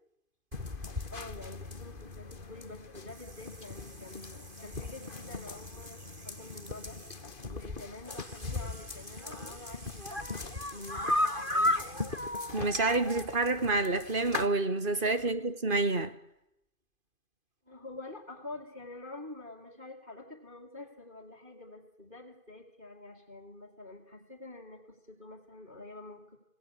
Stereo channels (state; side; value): late; left; 2.5 ms